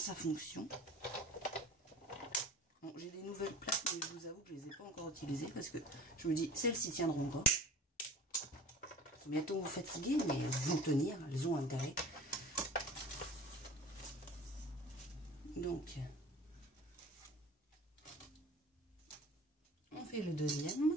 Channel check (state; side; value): normal; both; correlation 0.41